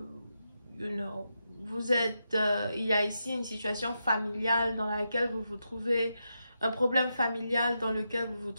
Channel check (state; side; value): inverted; both; correlation -0.86